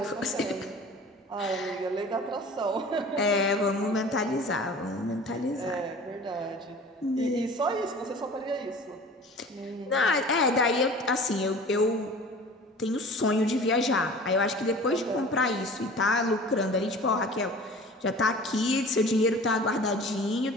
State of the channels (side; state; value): both; normal; correlation 0.42